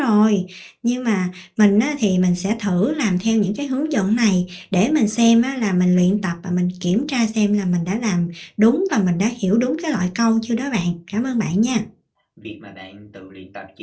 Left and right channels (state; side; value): identical; both; correlation 1.00